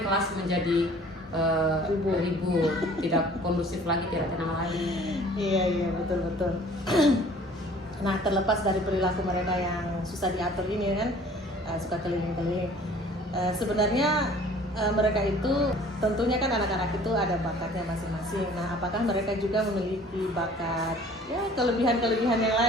kelas menjadi ribut, tidak kondusif lagi, tidak tenang lagi. Iya betul. Nah, terlepas dari perilaku mereka yang susah diatur ini kan, suka keliling-keliling. Sebenarnya mereka itu tentunya kan anak-anak itu ada bakatnya masing-masing. Nah, apakah mereka juga memiliki bakat, ya kelebihan-kelebihan yang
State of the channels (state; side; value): normal; both; correlation 0.51